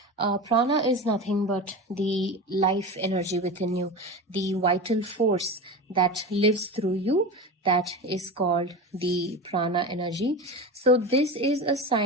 Prana is nothing but the life energy within you, the vital force that lives through you. That is called the Prana energy. So this is a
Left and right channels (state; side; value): normal; both; correlation 0.26